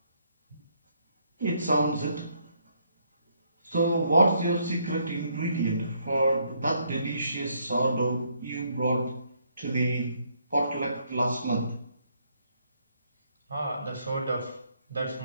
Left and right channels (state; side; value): inverted; both; correlation -0.71